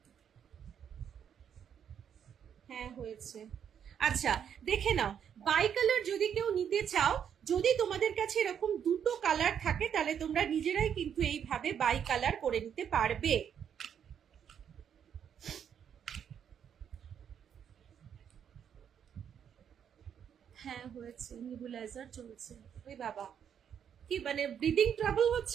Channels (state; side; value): quieter; left; 8.4 dB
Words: হ্যাঁ হয়েছে। আচ্ছা, দেখে নাও বাই কালার যদি কেউ নিতে চাও, যদি তোমাদের কাছে এরকম দুটো কালার থাকে, তাহলে তোমরা নিজেরাই কিন্তু এইভাবে বাই কালার করে নিতে পারবে। হ্যাঁ হয়েছে, নিবুলাইজার চলছে। ওই বাবা, কি মানে ব্রিদিং ট্রাবল